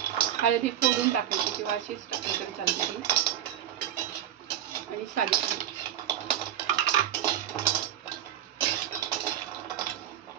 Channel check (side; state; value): left; quieter; 11.3 dB